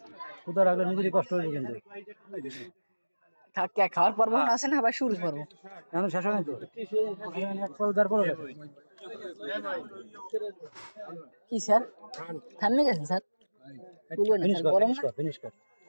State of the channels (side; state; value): both; inverted; correlation -1.00